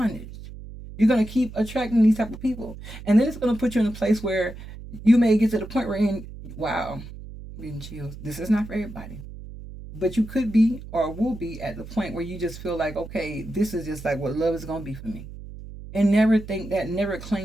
You're gonna keep attracting these type of people. And then it's gonna put you in a place where you may get to the point where wow, getting chills. This is not for everybody. But you could be or will be at the point where you just feel like, okay, this is just like what love is gonna be for me. And never think that, never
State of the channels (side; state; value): right; noise; hum, 13 dB below the sound